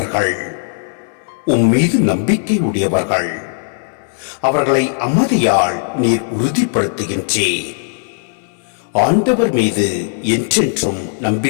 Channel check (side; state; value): right; silent; 63 dB below the other